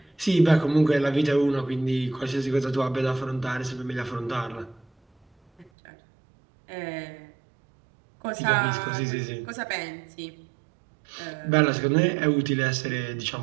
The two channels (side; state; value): left; drops out; at 5.7 s